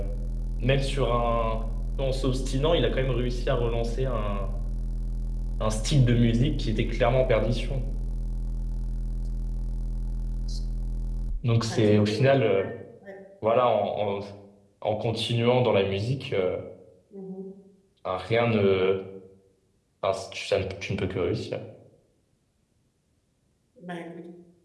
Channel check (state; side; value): identical; both; correlation 1.00